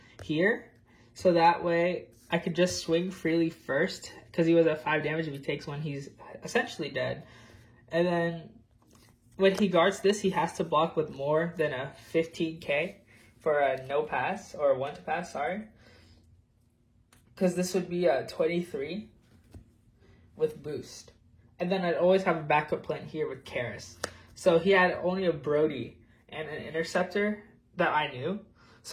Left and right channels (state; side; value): identical; both; correlation 1.00